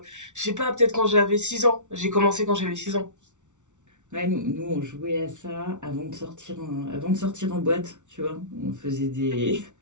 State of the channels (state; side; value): late; left; 0.85 ms